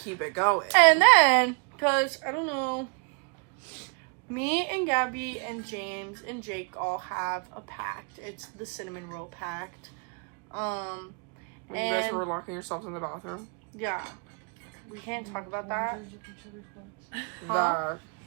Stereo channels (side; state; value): left; quieter; 36.5 dB